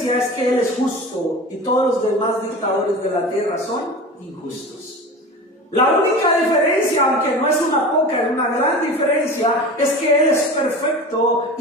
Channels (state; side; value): normal; both; correlation 0.33